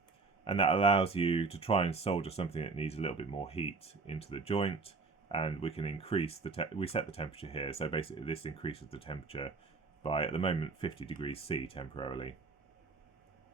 and that allows you to try and solder something that needs a little bit more heat into the joint. And we can increase we set the temperature here, so basically this increases the temperature by, at the moment, 50 degrees C temporarily.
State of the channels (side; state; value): left; quieter; 4.2 dB